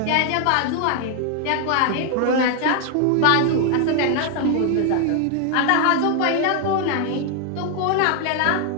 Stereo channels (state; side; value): different; both; correlation 0.01